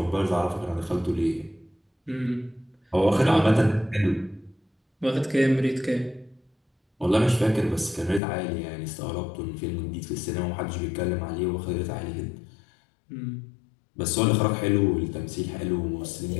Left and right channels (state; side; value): drops out; right; at 8.2 s